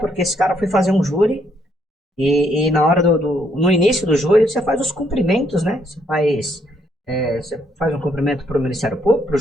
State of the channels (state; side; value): normal; both; correlation 0.72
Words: esse cara foi fazer um júri. E na hora no início do júri, você faz os cumprimentos, né? Você faz um cumprimento para o Ministério Público, para o